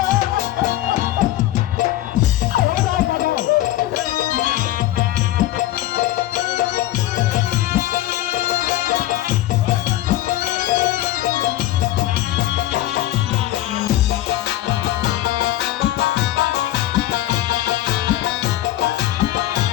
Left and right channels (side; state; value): right; quieter; 14.9 dB